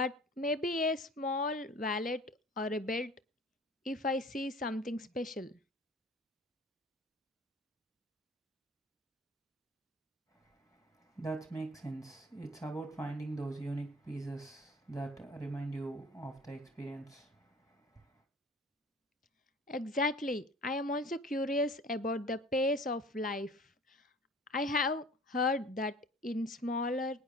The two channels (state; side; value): normal; both; correlation 0.45